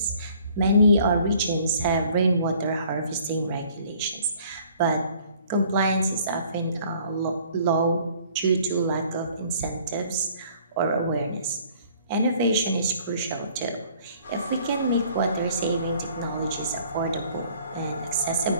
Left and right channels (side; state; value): both; inverted; correlation -0.56